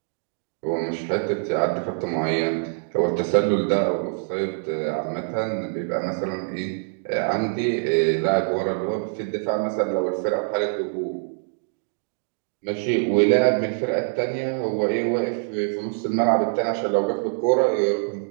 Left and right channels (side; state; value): left; silent; digital silence